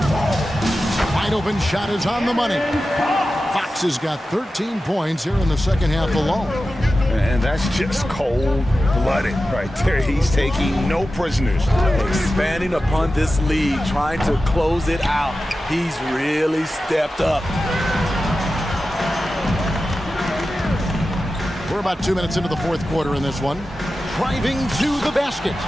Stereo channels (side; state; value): both; normal; correlation 0.93